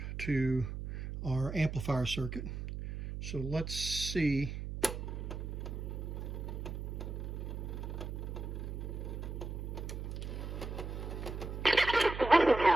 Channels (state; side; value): noise; right; hum, 6 dB below the sound